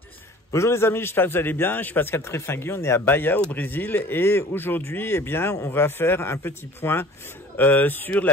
Bonjour les amis, j'espère que vous allez bien. Je suis Pascal Trefingui, on est à Bahia au Brésil et aujourd'hui, eh bien, on va faire un petit point sur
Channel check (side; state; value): both; normal; correlation 0.46